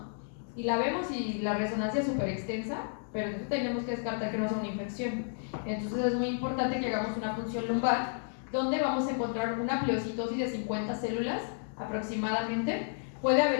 Y la vemos y la resonancia es súper extensa, pero entonces tenemos que descartar que no sea una infección. Entonces es muy importante que hagamos una punción lumbar, donde vamos a encontrar una pleocitosis de 50 células aproximadamente. Puede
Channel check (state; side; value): silent; right; digital silence